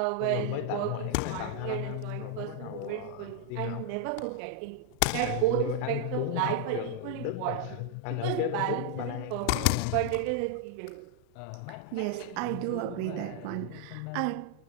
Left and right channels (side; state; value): both; different; correlation 0.00